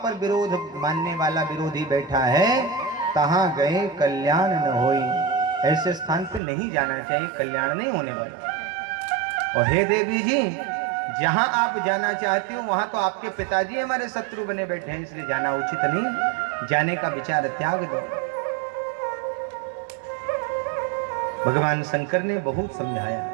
विरोध मानने वाला विरोधी बैठा है, तहां गए कल्याण न होई। ऐसे स्थान पे नहीं जाना चाहिए, कल्याण नहीं होने वाला। और हे देवी जी, जहां आप जाना चाहती हो वहां तो आपके पिताजी हमारे शत्रु बने बैठे हैं, इसलिए जाना उचित नहीं। जाने का विचार त्याग दो। भगवान शंकर ने बहुत समझाया,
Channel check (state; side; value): drops out; left; at 6.4 s